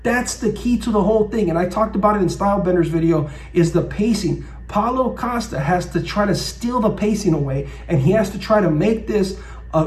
That's the key to the whole thing. And I talked about it in Stylebender's video, is the pacing. Paulo Costa has to try to steal the pacing away, and he has to try to make this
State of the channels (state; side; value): identical; both; correlation 1.00